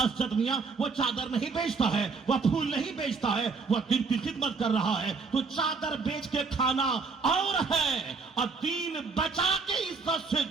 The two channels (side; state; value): left; quieter; 4.7 dB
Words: اسجد میاں وہ چادر نہیں بیچتا ہے, وہ پھول نہیں بیچتا ہے, وہ دین کی خدمت کر رہا ہے. تو چادر بیچ کے کھانا اور ہے اور دین بچا کے عزت سے